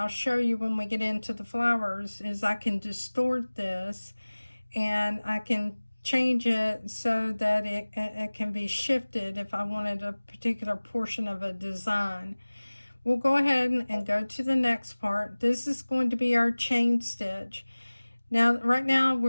show you when we get into the flowers, is I can distort this, and I can change it so that it can be shifted if I wanted a particular portion of a design. We'll go ahead and go to the next part. This is going to be our chain stitch. Now, right now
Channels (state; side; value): inverted; both; correlation -1.00